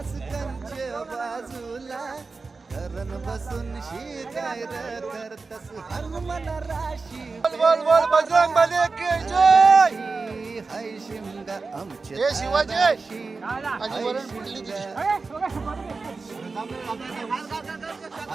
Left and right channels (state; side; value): quieter; left; 4.1 dB